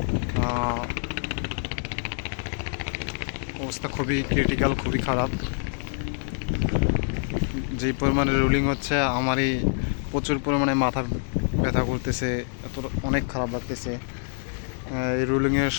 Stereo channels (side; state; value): right; silent; 61 dB below the other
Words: অবস্থা খুবই ক্রিটিক্যাল, খুবই খারাপ। যেই পরিমাণে রুলিং হচ্ছে আমারই প্রচুর পরিমাণে মাথা ব্যথা করতেছে, এত অনেক খারাপ লাগতেছে। এই রুলিংয়ের